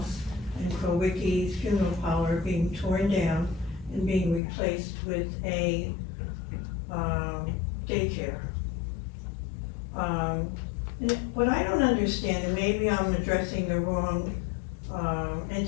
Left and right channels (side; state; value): right; drops out; at 4.4 s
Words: and Krowicki's funeral parlor being torn down and being replaced with a daycare. What I don't understand, and maybe I'm addressing the wrong